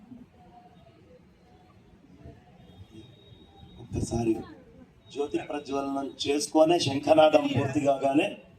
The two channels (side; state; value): both; identical; correlation 1.00